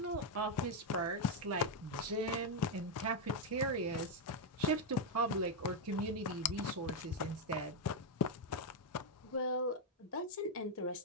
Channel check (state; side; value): normal; both; correlation 0.01